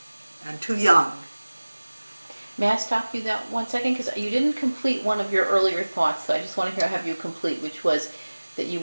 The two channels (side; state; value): both; inverted; correlation -1.00